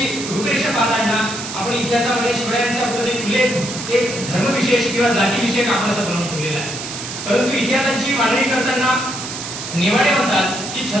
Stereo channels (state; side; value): noise; right; hiss, 8 dB below the sound